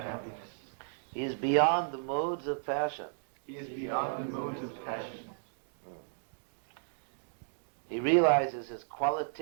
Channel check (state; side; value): silent; left; digital silence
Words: He is beyond the modes of passion. He is beyond the modes of passion. He realizes his